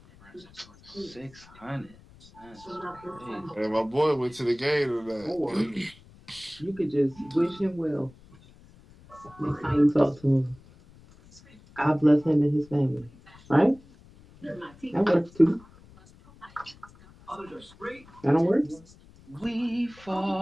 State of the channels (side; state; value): left; noise; rumble, 24 dB below the sound